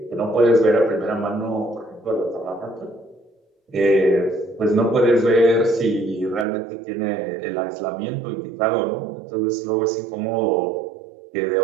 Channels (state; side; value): drops out; left; at 6.5 s